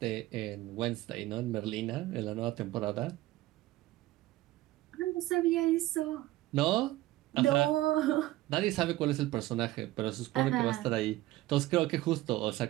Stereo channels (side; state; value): left; quieter; 17.0 dB